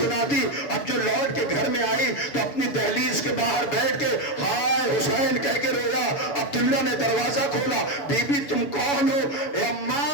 دی۔ اب جو لوٹ کے گھر میں آئی تو اپنی دہلیز کے باہر بیٹھ کے ہائے حسین کہہ کے رویا۔ عبداللہ نے دروازہ کھولا، بی بی تم کون ہو؟ اے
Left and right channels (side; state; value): right; late; 7.1 ms